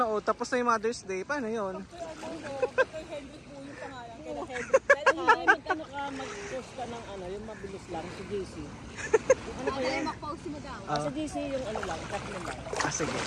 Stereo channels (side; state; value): both; identical; correlation 1.00